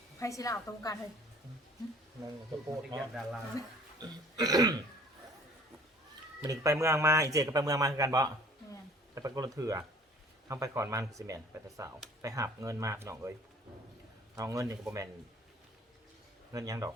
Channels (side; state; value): both; normal; correlation 0.52